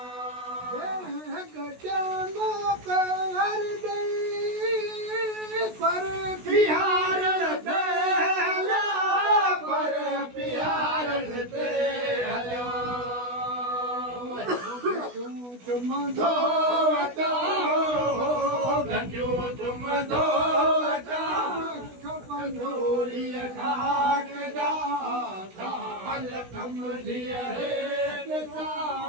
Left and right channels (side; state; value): left; late; 16 ms